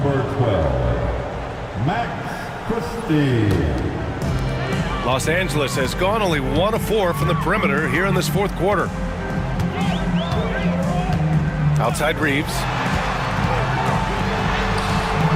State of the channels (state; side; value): identical; both; correlation 1.00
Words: 12, Max Christie. Los Angeles has gone only 1 of 4 from the perimeter here in this fourth quarter. Outside Reeves.